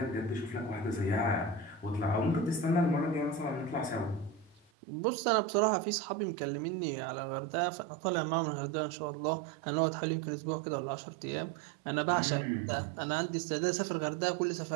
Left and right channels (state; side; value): drops out; left; at 4.7 s